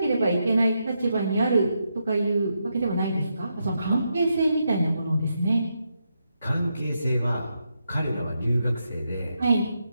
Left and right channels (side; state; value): both; inverted; correlation -0.83